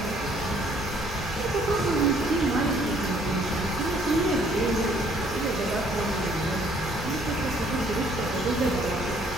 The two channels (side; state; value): both; normal; correlation 0.62